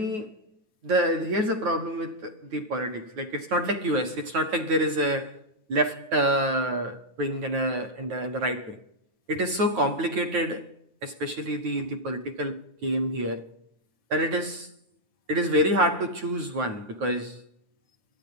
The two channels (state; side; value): late; left; 9.3 ms